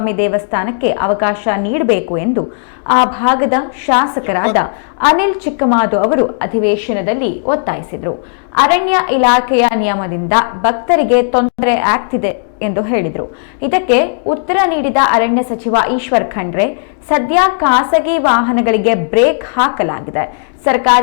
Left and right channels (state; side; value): silent; right; digital silence